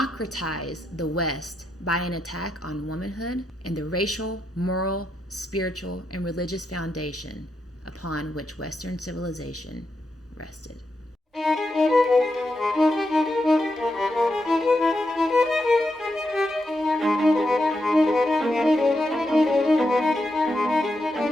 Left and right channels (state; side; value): normal; both; correlation 0.84